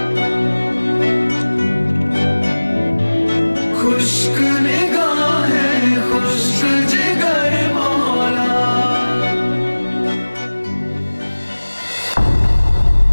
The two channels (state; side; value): inverted; both; correlation -1.00